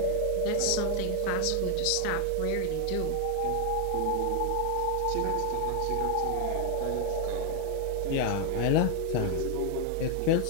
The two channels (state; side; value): different; both; correlation 0.00